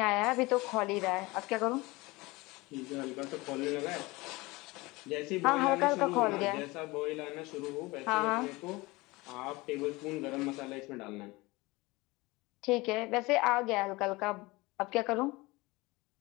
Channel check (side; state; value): right; quieter; 22.5 dB